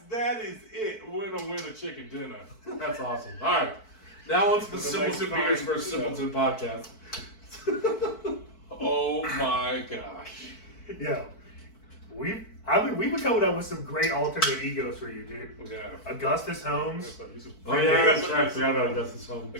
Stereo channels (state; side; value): late; right; 4.5 ms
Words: that is it. Winner, chicken dinner. That's awesome. All right. Now on to the The Simpleton next Beers time, for a Simpleton podcast. Oh my gosh. Yo, we've been coming up with some great alternate egos for you, dude. Yeah. Augustus Holmes, Oh, yeah, that's right. I forgot about Augustus Holmes.